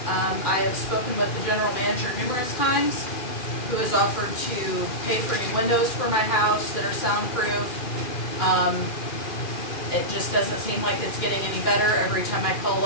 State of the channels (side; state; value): right; late; 2.4 ms